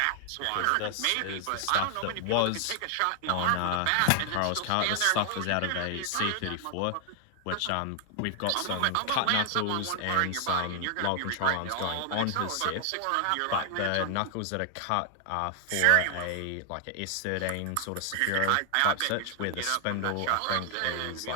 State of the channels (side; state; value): both; different; correlation 0.00